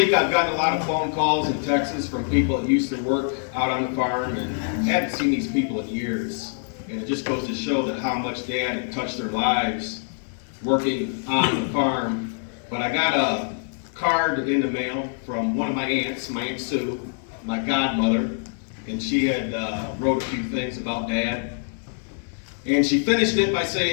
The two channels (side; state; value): right; silent; 60 dB below the other